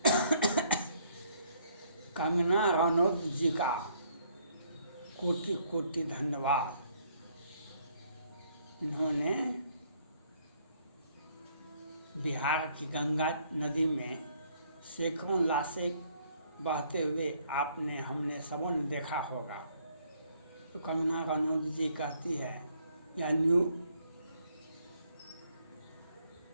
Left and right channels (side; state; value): both; inverted; correlation -0.66